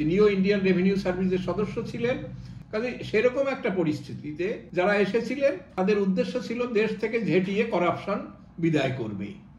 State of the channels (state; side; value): identical; both; correlation 1.00